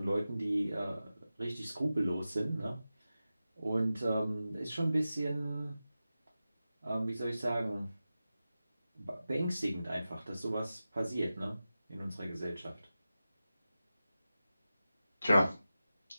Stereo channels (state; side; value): inverted; both; correlation -0.94